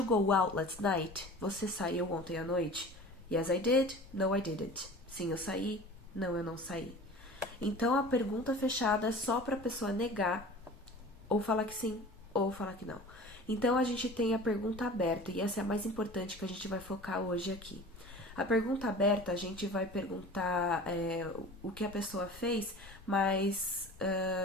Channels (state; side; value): normal; both; correlation 0.40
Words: go out last night? Você saiu ontem à noite? Yes, I did. No, I didn't. Sim, eu saí. Não, eu não saí. Então, a pergunta fechada é só para a pessoa negar, ou falar que sim, ou falar que não. Então, a gente tem a pergunta aberta, e essa é a mais importante que a gente vai focar hoje aqui. A pergunta aberta, a gente vai perguntar o que a pessoa fez, mas